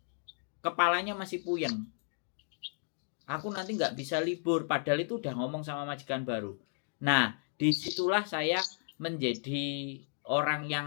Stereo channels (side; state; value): right; silent; digital silence